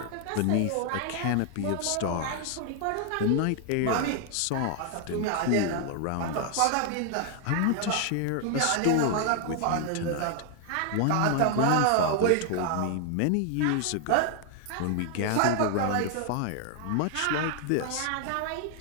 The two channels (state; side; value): different; both; correlation 0.00